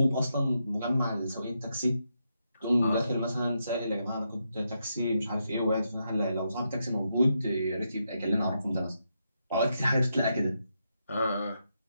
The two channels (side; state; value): both; inverted; correlation -0.83